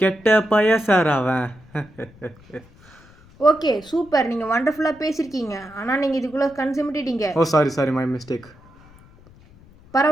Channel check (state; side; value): noise; left; rumble, 25 dB below the sound